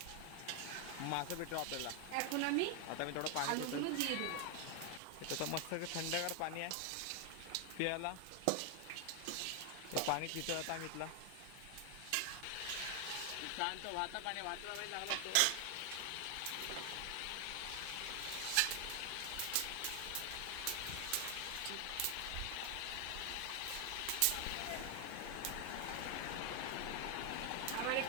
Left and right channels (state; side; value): different; both; correlation 0.00